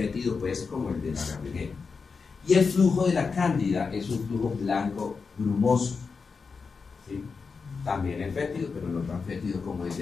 pues como el de la Gardnerella. Y el flujo de la Cándida es un flujo blanco grumoso. ¿Sí? También es fétido, pero no tan fétido como el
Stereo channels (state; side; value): quieter; right; 5.0 dB